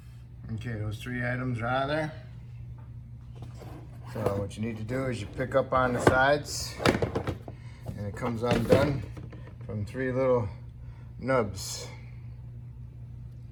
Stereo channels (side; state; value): both; identical; correlation 1.00